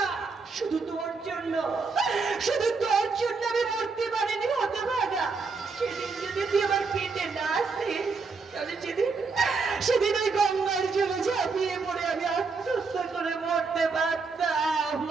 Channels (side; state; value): left; quieter; 4.5 dB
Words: শুধু তোর জন্য, শুধু তোর জন্য আমি মরতে পারিনি হতভাগা। সেদিন যদি তুই আমার পেটে না আসতিস, তাহলে সেদিন ওই গঙ্গার জলে ঝাঁপিয়ে পড়ে আমি আত্মহত্যা করে মরতে পারতাম।